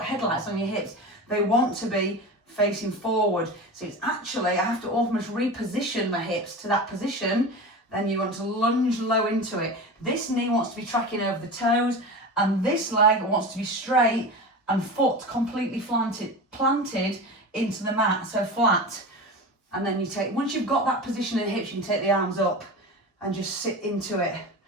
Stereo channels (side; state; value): both; normal; correlation 0.29